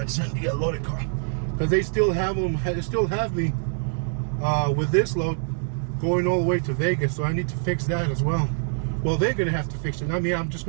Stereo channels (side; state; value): left; silent; digital silence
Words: Send the loaded car, because they still have them. They still have me with this load going all the way to Vegas, so I need to fix that as well. Well, they're gonna have to fix it. I mean, I'm just